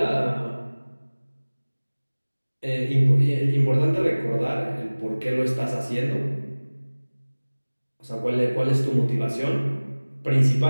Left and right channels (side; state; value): both; inverted; correlation -1.00